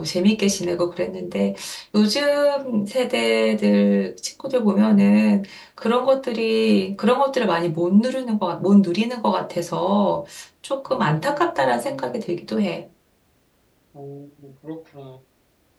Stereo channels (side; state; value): both; identical; correlation 1.00